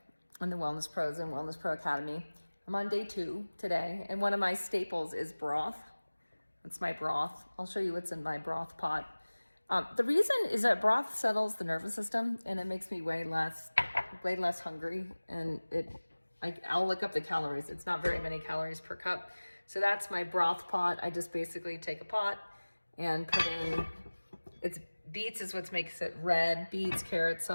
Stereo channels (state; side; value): inverted; both; correlation -1.00